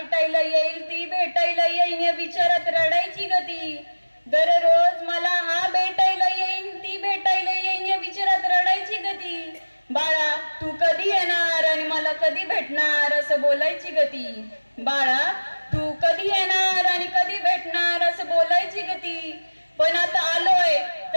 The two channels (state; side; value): inverted; both; correlation -1.00